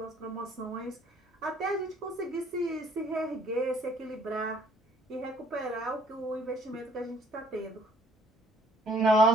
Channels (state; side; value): normal; both; correlation 0.61